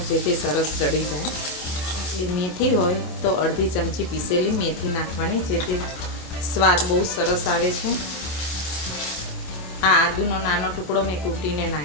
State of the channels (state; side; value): late; right; 27 ms